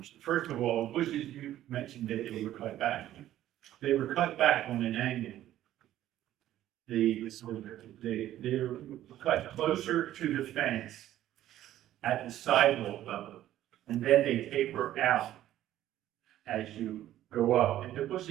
First of all, bushes you mentioned that they were cut back. They were cut back on an angle. They were cut closer to the fence at the sidewalk level, and then they taper out as you go up. And the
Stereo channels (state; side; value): quieter; left; 13.0 dB